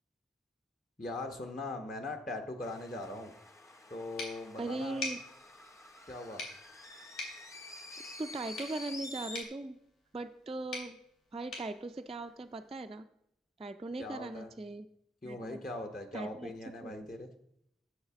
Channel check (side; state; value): both; normal; correlation 0.63